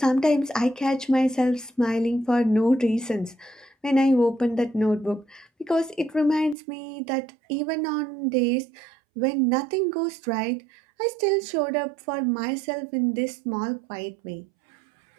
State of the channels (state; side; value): drops out; left; at 6.6 s